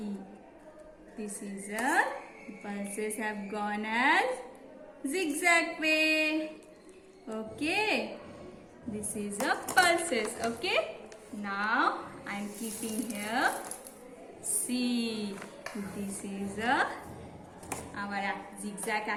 This is a pulses have gone as zigzag way. Okay. This is a pulses. Okay. Now I am keeping here. See. This is our zigzag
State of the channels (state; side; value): identical; both; correlation 1.00